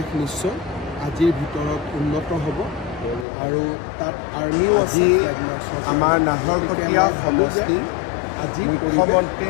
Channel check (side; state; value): right; drops out; at 3.2 s